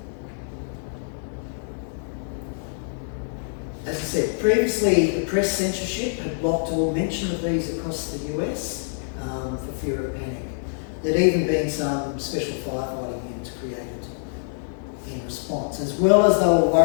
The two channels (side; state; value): right; silent; digital silence